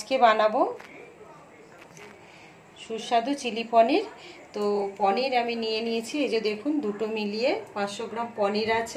বানাবো সুস্বাদু চিলি পনির। তো পনির আমি নিয়ে নিয়েছি, এই যে দেখুন, দুটো মিলিয়ে 500 গ্রাম পনির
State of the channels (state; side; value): identical; both; correlation 1.00